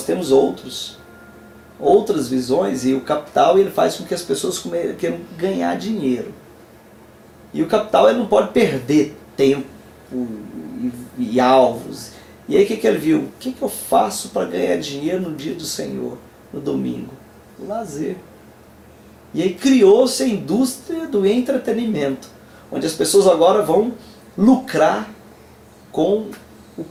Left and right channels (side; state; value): both; identical; correlation 1.00